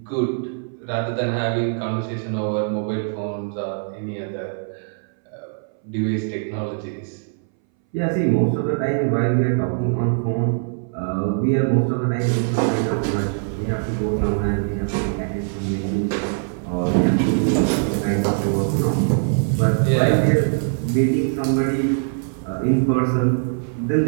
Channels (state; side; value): silent; left; 62 dB below the other